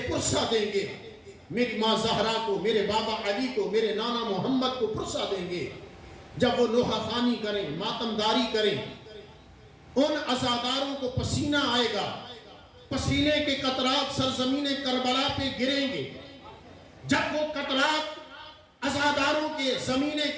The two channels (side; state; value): both; identical; correlation 1.00